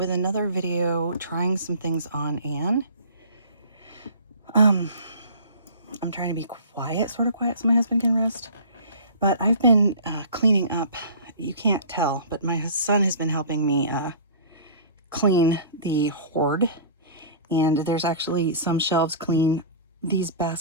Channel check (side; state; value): both; inverted; correlation -0.42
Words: another video trying some things on Anne. I'm trying to be quiet, sort of quiet, so my husband can rest. But I've been cleaning up. You can't tell, but my son has been helping me clean the hoard. And there's actually some shelves clean. These